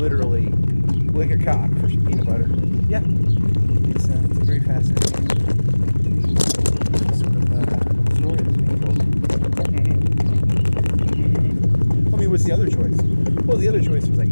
lick a cock for some peanut butter. Yeah. It's a very fascinating sort of story that's being told. I mean, what's the other choice? Well, the other choice was like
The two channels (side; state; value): both; inverted; correlation -1.00